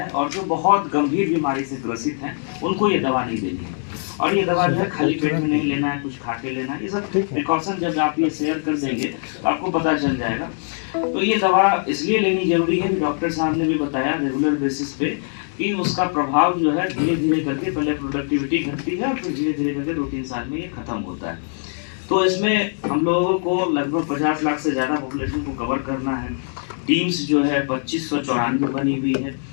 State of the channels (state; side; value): silent; right; 64 dB below the other